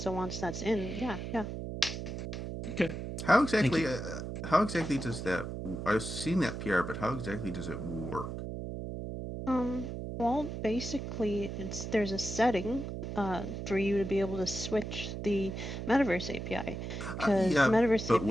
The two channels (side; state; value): right; noise; hum, 6 dB below the sound